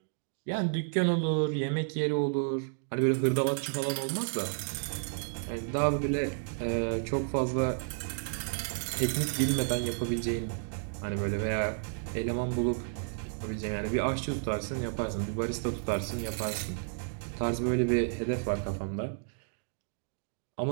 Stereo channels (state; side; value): silent; left; digital silence